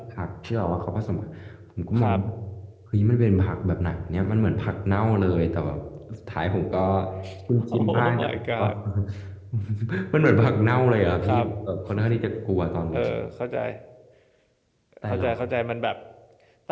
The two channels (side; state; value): both; identical; correlation 1.00